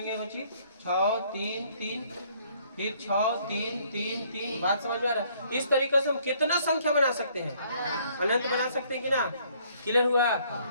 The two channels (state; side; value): inverted; both; correlation -0.63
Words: बच्ची 6 3 3 फिर 6 3 3 3। बात समझ में आ रहा है? इस तरीके से हम कितना संख्या बना सकते हैं, अनंत बना सकते हैं कि ना? क्लियर हुआ?